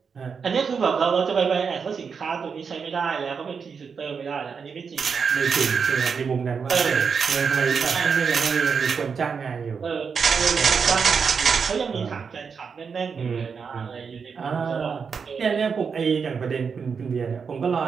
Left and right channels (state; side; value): quieter; left; 5.9 dB